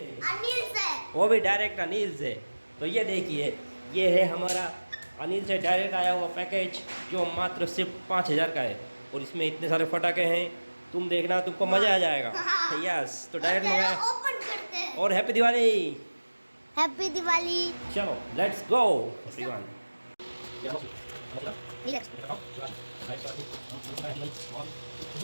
अनिल से, वो भी डायरेक्ट अनिल से। तो ये देखिए, ये है हमारा अनिल से डायरेक्ट आया हुआ पैकेज जो मात्र सिर्फ 5,000 का है। और इसमें इतने सारे पटाखे हैं, तुम देखना, तुमको मज़ा आ जाएगा। यस, तो डायरेक्ट मंगाया। ओपन करते हैं। और हैप्पी दिवाली। हैप्पी दिवाली। चलो लेट्स गो एवरीवन।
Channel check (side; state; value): both; inverted; correlation -1.00